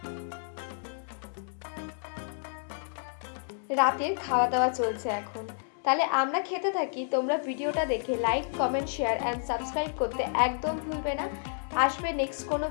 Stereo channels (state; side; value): silent; right; digital silence